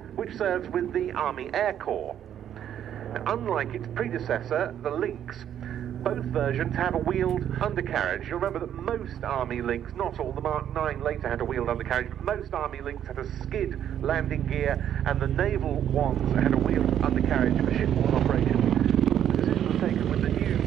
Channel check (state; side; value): quieter; left; 10.0 dB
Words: which serves with the Army Air Corps. Now, unlike its predecessor, the Lynx, both versions have a wheeled undercarriage. You'll remember that most Army Lynx, not all, the Mark 9 later had a wheeled undercarriage, but most Army Lynx had a skid landing gear, and the naval ones had a wheeled undercarriage for shipborne operations. The decision was taken with the new